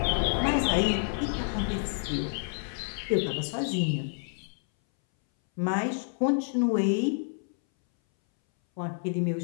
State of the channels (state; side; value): silent; right; 59 dB below the other